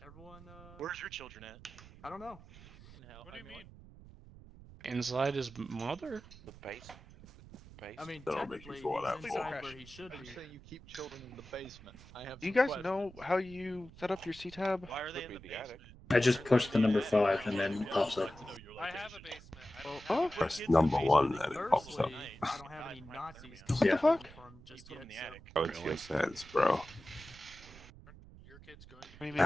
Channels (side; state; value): right; noise; rumble, 19 dB below the sound